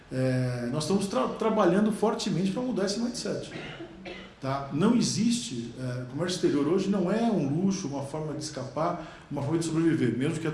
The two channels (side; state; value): both; identical; correlation 1.00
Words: nós estamos trabalhando fortemente para mudar esse mindset. Tá? Não existe, comércio exterior hoje não é um luxo, uma forma de escapar, uma forma de sobreviver, mesmo que